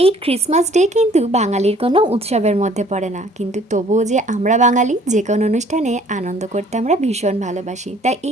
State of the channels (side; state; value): both; normal; correlation 0.56